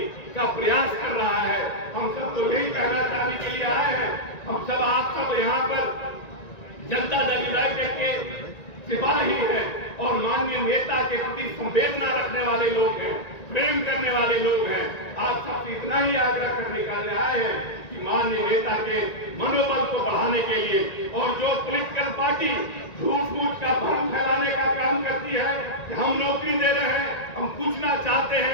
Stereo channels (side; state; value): right; late; 1.9 ms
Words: का प्रयास कर रहा है, हम सबको यही कहना चाहने के लिए आए हैं। हम सब, आप सब यहाँ पर जनता दल यूनाइटेड के सिपाही हैं और माननीय नेता के प्रति संवेदना रखने वाले लोग हैं, प्रेम करने वाले लोग हैं। आप सबसे इतना ही आग्रह करने के लिए आए हैं कि माननीय नेता के मनोबल को बढ़ाने के लिए, और जो पॉलिटिकल पार्टी झूठ का भ्रम फैलाने का काम करती है कि हम नौकरी दे रहे हैं, हम पूछना चाहते